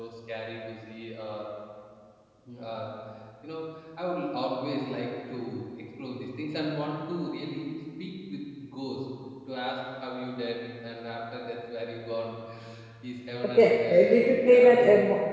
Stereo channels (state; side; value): identical; both; correlation 1.00